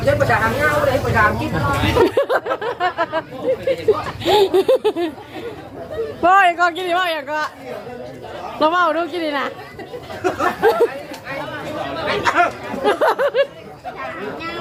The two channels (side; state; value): both; identical; correlation 1.00